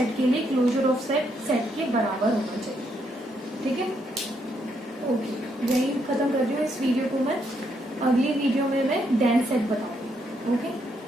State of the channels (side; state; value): both; normal; correlation 0.75